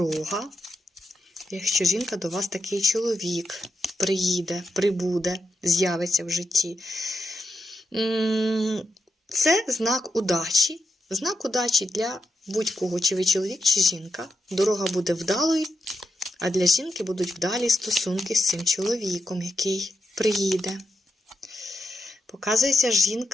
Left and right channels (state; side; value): normal; both; correlation 0.85